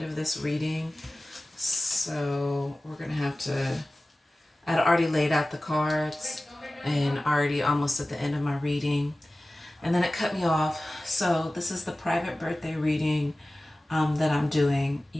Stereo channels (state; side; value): normal; both; correlation 0.97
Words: of this reading, so we're gonna have to. I'd already laid out the cards and already almost at the end of my reading, and then it cut me off. So this is the private birthday reading that I'm doing.